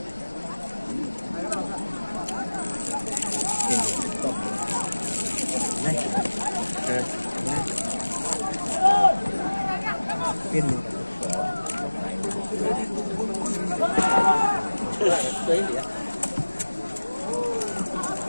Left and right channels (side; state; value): both; inverted; correlation -1.00